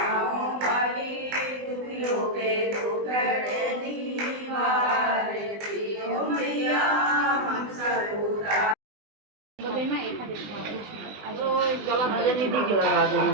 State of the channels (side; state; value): left; late; 20 ms